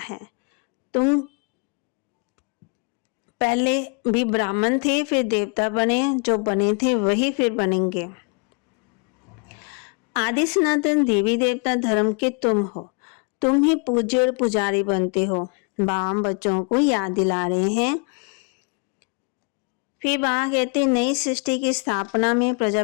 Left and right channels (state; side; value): quieter; right; 34.6 dB